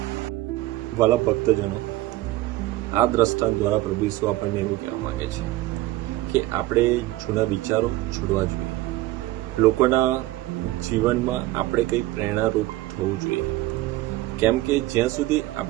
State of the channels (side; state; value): left; quieter; 17.1 dB